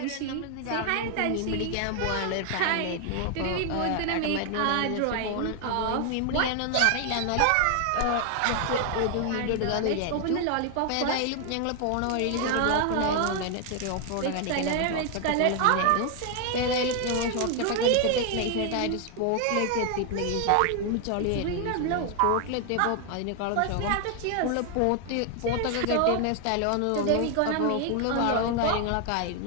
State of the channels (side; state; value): both; different; correlation 0.00